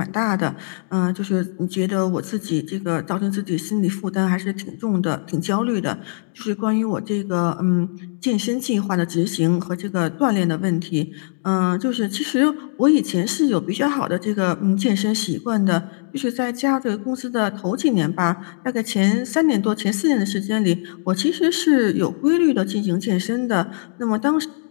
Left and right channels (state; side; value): silent; right; digital silence